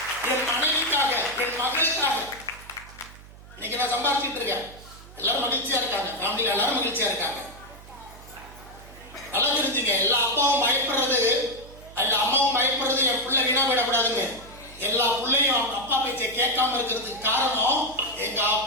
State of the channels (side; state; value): right; noise; hum, 19 dB below the sound